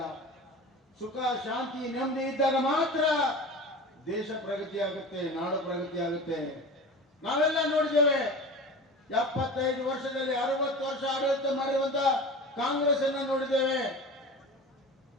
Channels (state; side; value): normal; both; correlation 0.34